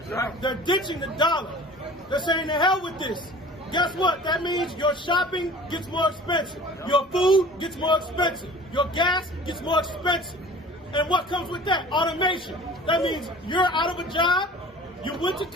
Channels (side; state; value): both; normal; correlation 0.44